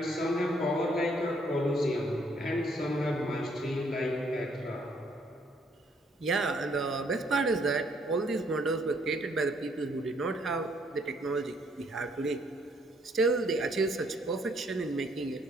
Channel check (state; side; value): normal; both; correlation 0.67